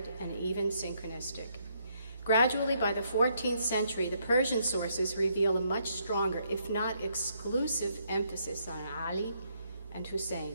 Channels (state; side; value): inverted; both; correlation -0.73